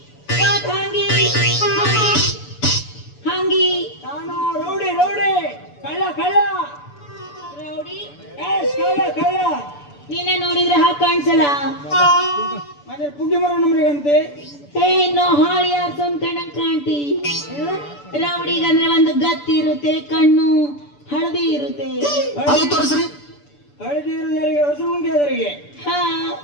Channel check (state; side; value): late; right; 6.9 ms